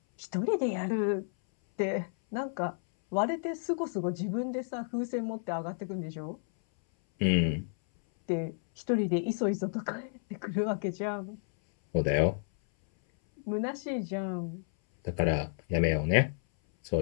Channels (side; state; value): right; silent; 57 dB below the other